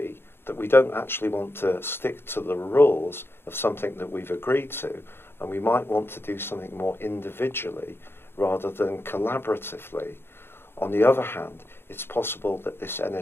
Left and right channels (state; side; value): late; right; 0.11 ms